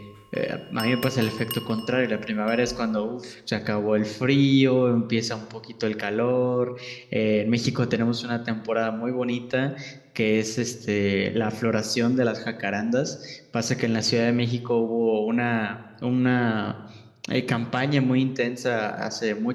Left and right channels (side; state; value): both; identical; correlation 1.00